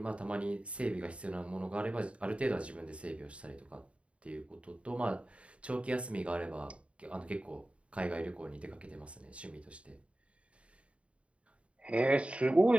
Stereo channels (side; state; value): left; late; 0.061 ms